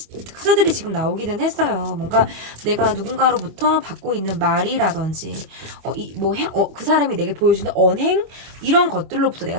지금 나오기는 했어요. 뭔가 내가 누군가로부터 받고 있는 말이라든지 그 사람이 내게 보여주는 언행, 이런 것들로부터 내가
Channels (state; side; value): late; left; 25 ms